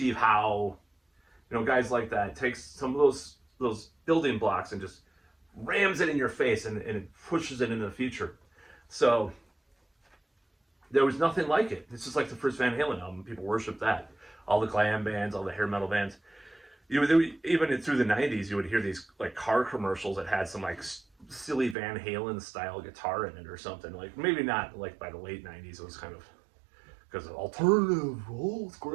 Howe, guys like that. It takes some of those building blocks and just rams it in your face and it pushes it into the future. So There was nothing like it. This is like the first Van Halen album. People worship that. All the glam bands, all the hair metal bands. Even through the '90s, you would hear these like car commercials that had some like silly Van Halen style guitar in it or something. Like maybe not like by the late '90s. It was kind of because of alternative. Oh, it's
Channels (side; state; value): left; drops out; at 21.8 s